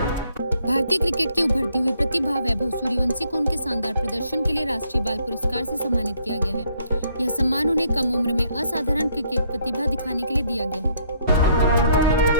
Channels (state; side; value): inverted; both; correlation -0.68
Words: भारतीय क्रिकेट की उभरती हुई प्रतिभा वैभव सूर्यवंशी को उनके शानदार प्रदर्शन के लिए राष्ट्रीय बाल पुरस्कार से सम्मानित किया गया है। यह सम्मान उन्हें कम उम्र में असाधारण क्रिकेट प्रतिभा दिखाने के लिए दिया गया है।